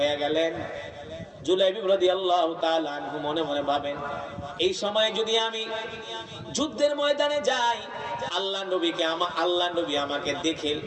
গেলেন। জুলাইবি রাদিয়াল্লাহু তাআলা আনহু মনে মনে ভাবেন, এই সময় যদি আমি যুদ্ধের ময়দানে যাই, আল্লাহ নবী আমাকে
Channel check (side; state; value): both; identical; correlation 1.00